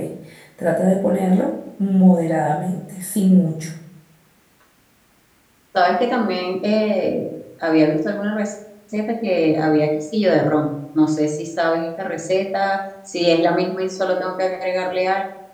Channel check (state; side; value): identical; both; correlation 1.00